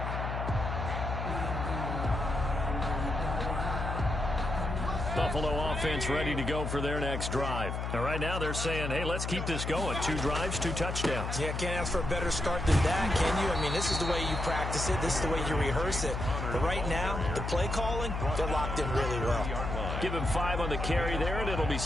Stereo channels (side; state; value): left; noise; hum, 3 dB below the sound